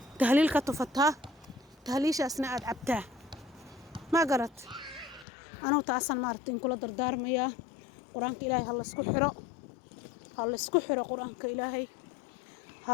tahliil ka tufataa tahliishaasna aad cabtaa ma garat anuu taasan maaragtay in kula dardaarmayaa quraanka ilaahay ha la isku xiro quraanka ilaahay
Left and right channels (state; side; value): drops out; right; at 5.2 s